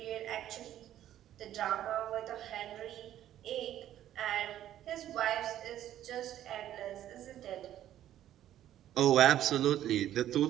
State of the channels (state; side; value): quieter; left; 12.0 dB